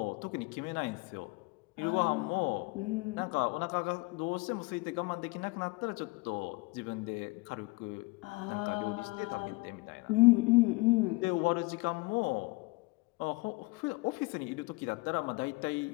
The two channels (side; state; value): right; quieter; 24.9 dB